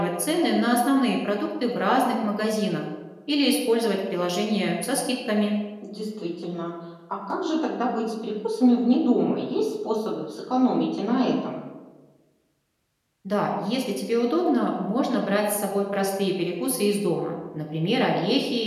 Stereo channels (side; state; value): both; identical; correlation 1.00